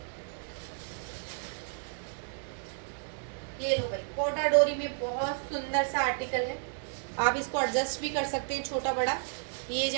ये लो भाई, कोटा डोरी में बहुत सुंदर सा आर्टिकल है, आप इसको एडजस्ट भी कर सकते हैं छोटा बड़ा। ये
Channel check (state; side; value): silent; left; 56 dB below the other